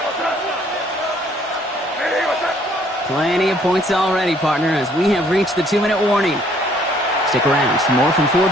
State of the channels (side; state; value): both; normal; correlation 0.62